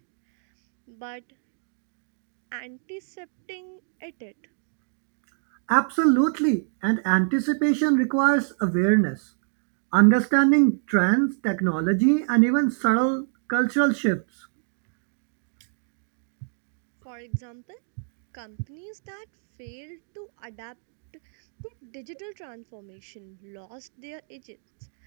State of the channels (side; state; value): left; silent; digital silence